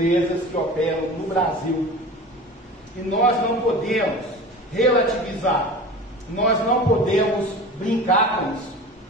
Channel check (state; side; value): normal; both; correlation 0.35